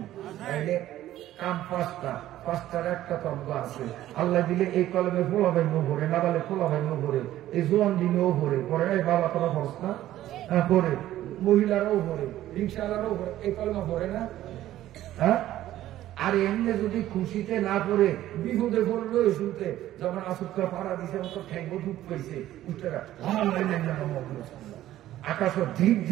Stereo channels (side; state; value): left; quieter; 13.7 dB